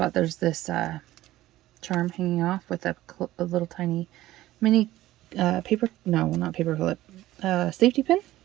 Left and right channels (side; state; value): left; quieter; 15.6 dB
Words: There's this charm hanging off with a little tiny mini not paper clip, safety pin.